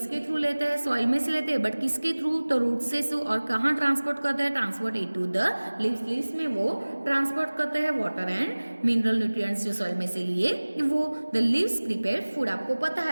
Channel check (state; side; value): inverted; both; correlation -1.00